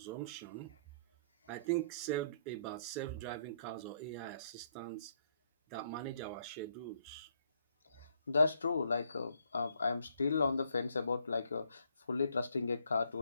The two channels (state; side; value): inverted; both; correlation -0.69